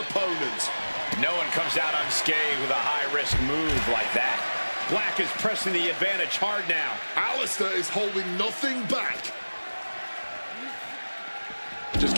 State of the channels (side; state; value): both; inverted; correlation -1.00